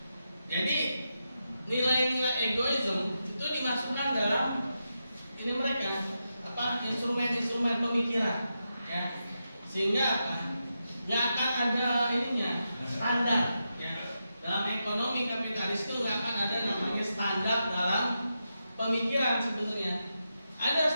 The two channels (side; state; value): both; inverted; correlation -0.87